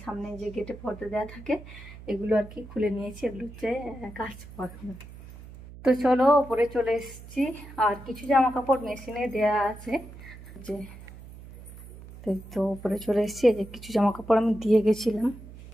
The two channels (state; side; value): noise; right; hum, 16 dB below the sound